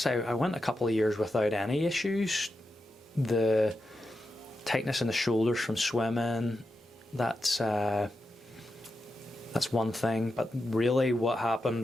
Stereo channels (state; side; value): normal; both; correlation 0.89